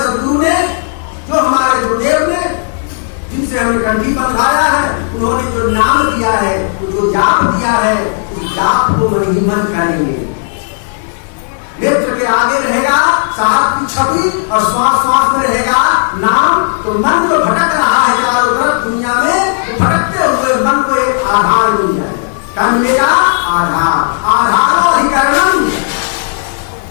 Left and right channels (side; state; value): right; silent; 71 dB below the other